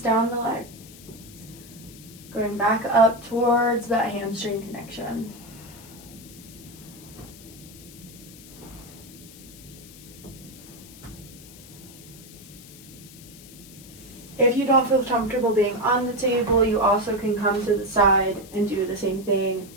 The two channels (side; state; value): left; noise; hiss, 19 dB below the sound